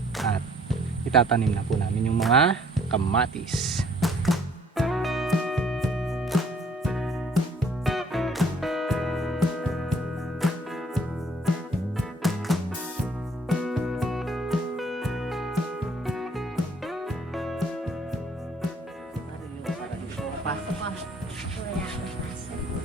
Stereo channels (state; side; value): normal; both; correlation 0.60